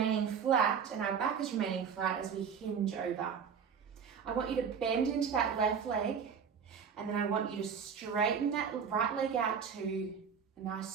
flat and our back is remaining flat as we hinge over. I want you to bend into that left leg, and then I want you to straighten that right leg out to a nice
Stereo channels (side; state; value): left; quieter; 6.8 dB